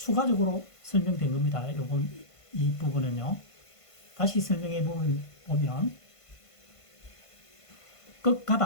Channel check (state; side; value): late; right; 1.5 ms